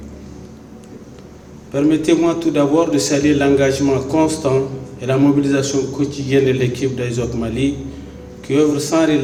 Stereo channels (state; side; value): identical; both; correlation 1.00